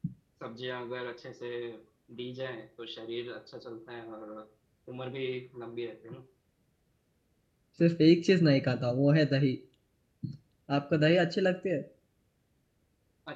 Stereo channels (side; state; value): both; identical; correlation 1.00